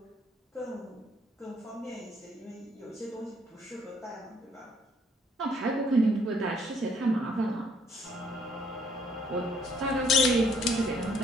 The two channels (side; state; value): both; normal; correlation 0.64